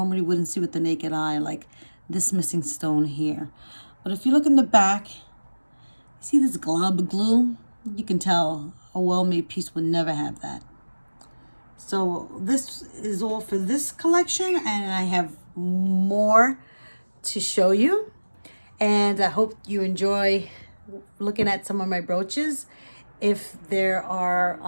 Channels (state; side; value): inverted; both; correlation -1.00